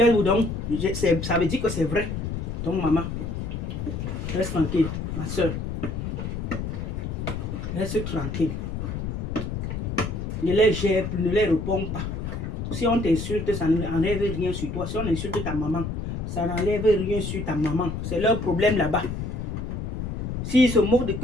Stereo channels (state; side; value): noise; left; rumble, 4 dB below the sound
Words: donc ça veut dire que c'est vrai. Donc maman, reste tranquille, ma soeur. Reste tranquille. Ne les gère plus, ne les réponds pas. Si on t'insulte, ça n'enlève rien sur toi. Si on insulte ta maman, ça n'enlève rien sur ta maman. C'est leur problème là-bas. S'ils se moquent de